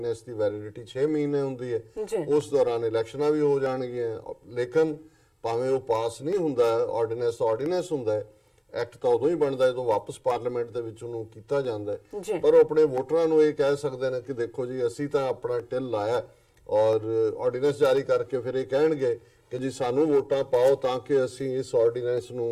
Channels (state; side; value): identical; both; correlation 1.00